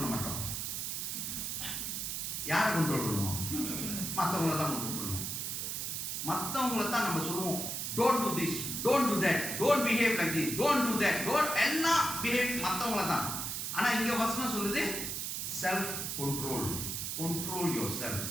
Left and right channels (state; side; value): noise; right; hiss, 3 dB below the sound